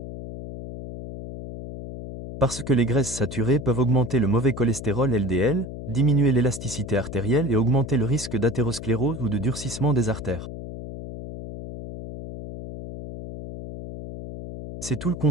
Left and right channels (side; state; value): left; noise; hum, 10 dB below the sound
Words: Parce que les graisses saturées peuvent augmenter le mauvais cholestérol LDL, diminuer l'élasticité artérielle et augmenter le risque d'athérosclérose ou de durcissement des artères. C'est tout le